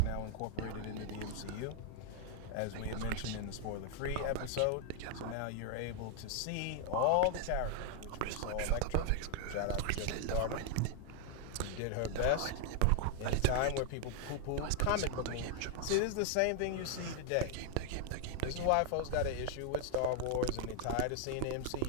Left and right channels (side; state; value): both; different; correlation 0.00